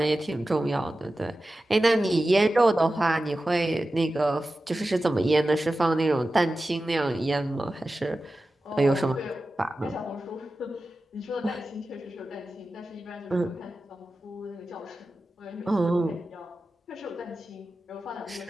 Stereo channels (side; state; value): both; normal; correlation 0.94